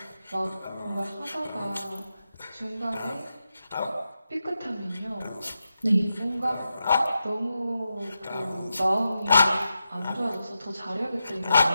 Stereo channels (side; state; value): both; inverted; correlation -0.88